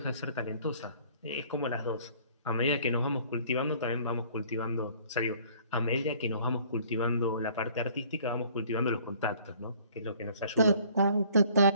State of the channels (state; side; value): inverted; both; correlation -0.56